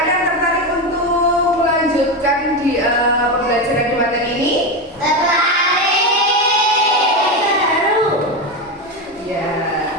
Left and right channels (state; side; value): normal; both; correlation 0.15